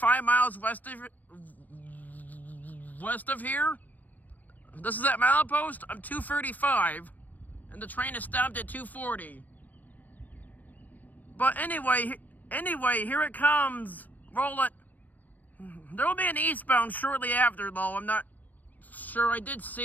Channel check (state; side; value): late; right; 0.084 ms